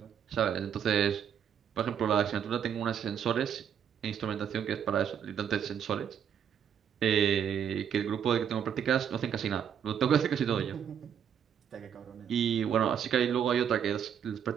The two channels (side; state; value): left; quieter; 8.4 dB